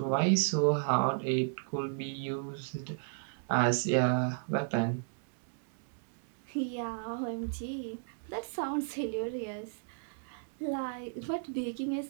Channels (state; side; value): silent; left; digital silence